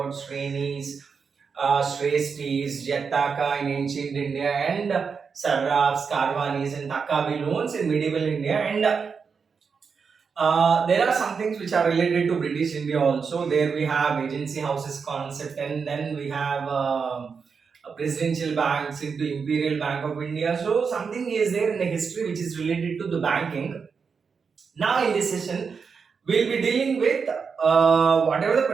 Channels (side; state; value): left; quieter; 5.7 dB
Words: Shrenis, Shrestris, Jataka in ancient India, and Sarrafs, Karvanis, and Takabi loans in medieval India. And there are some things which are related to British India also. There we have agency houses concept, and then we have presidential banks into Imperial Bank of India. So something is there in the history which is related to the banking. Now in this session, we'll be dealing with whatever the